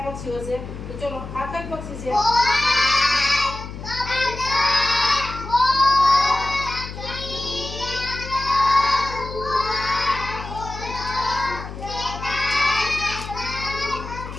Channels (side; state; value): left; noise; hum, 10 dB below the sound